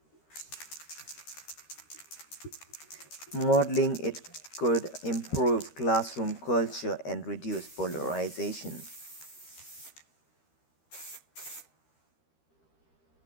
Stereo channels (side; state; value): right; late; 13 ms